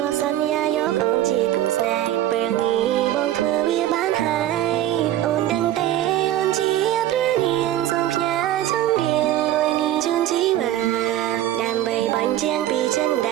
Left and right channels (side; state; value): left; quieter; 12.9 dB